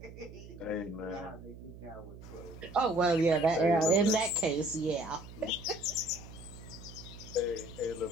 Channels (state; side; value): noise; right; hum, 15 dB below the sound